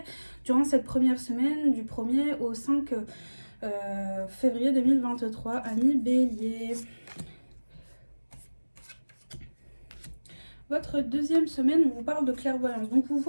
durant cette première semaine du 1er au 5 février 2023. Amis bélier. Votre deuxième semaine, on vous parle de clairvoyance. Donc vous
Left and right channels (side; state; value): both; inverted; correlation -1.00